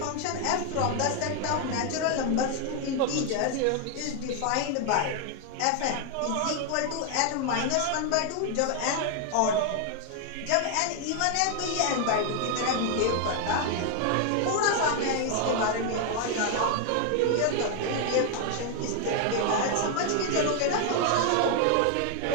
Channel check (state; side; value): different; both; correlation 0.00